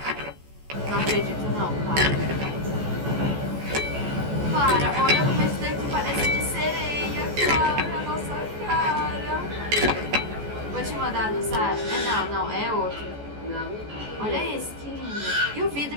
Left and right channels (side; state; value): left; late; 14 ms